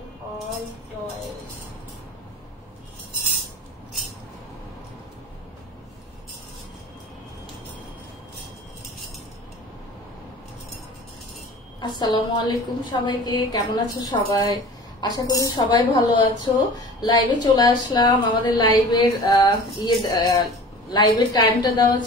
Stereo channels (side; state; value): both; normal; correlation 0.41